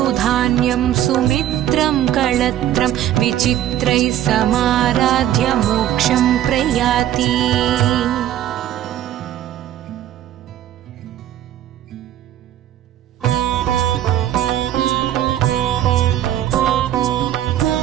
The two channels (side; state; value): left; quieter; 12.0 dB